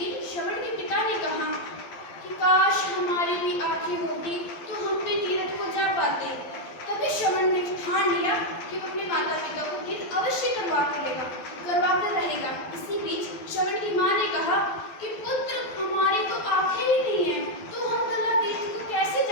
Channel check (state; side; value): late; right; 12 ms